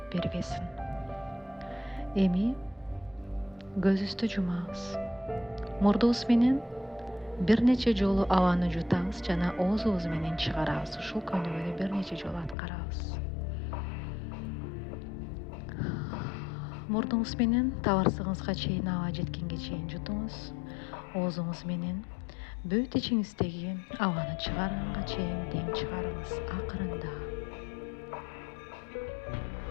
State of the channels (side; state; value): right; drops out; at 12.6 s